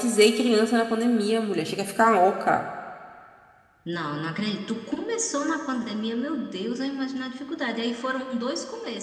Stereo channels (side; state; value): both; identical; correlation 1.00